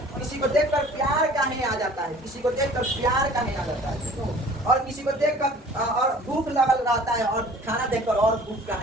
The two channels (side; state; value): both; normal; correlation 0.48